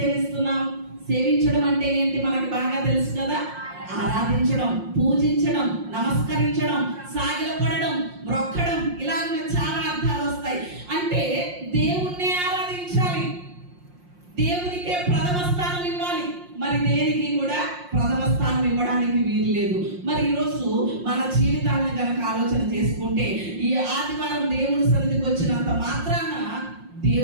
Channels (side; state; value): left; late; 5.6 ms